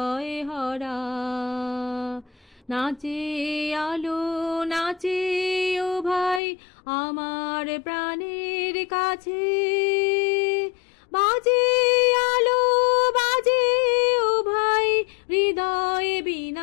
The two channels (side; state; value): right; drops out; at 6.4 s